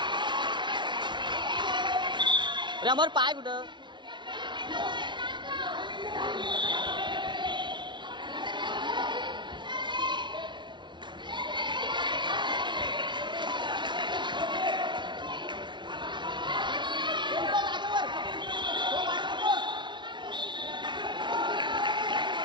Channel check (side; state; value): left; late; 0.23 ms